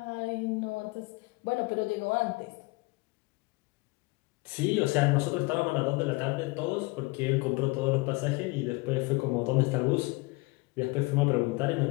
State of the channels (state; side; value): quieter; right; 24.6 dB